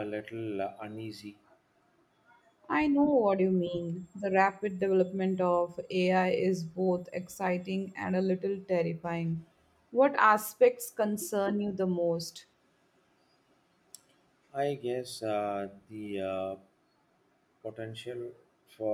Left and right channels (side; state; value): both; identical; correlation 1.00